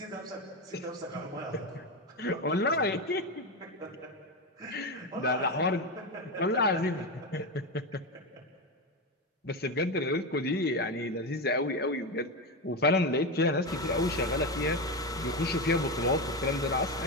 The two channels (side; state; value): both; normal; correlation 0.15